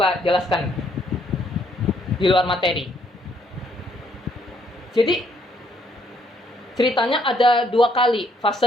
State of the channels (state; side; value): normal; both; correlation 0.69